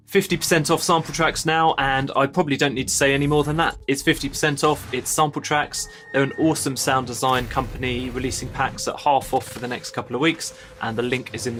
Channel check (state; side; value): identical; both; correlation 1.00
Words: 50% off sample tracks now, and I probably don't need to say any more than that. It's 50% off, it's sample tracks. They're an awesome sound design company releasing packs at half off for the next couple of weeks, and the link is in